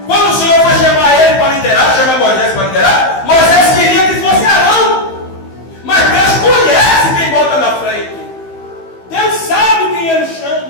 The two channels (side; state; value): right; late; 15 ms